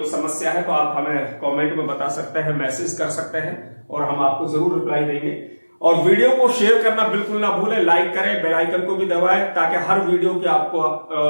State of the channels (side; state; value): both; inverted; correlation -1.00